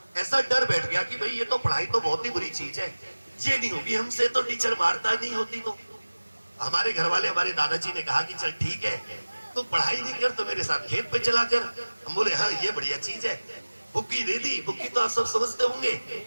गया कि भाई ये तो पढ़ाई तो बहुत ही बुरी चीज है, ये नहीं होगी हमसे, तो टीचर मारता नहीं होती। तो हमारे घर वाले, हमारे दादाजी ने कहा कि चल ठीक है, तू पढ़ाई नहीं कर तो मेरे साथ खेत पे चला कर। हम बोले हाँ ये बढ़िया चीज है। बुक्की दे दी, बुक्की तो आप सब समझते होंगे,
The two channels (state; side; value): inverted; both; correlation -1.00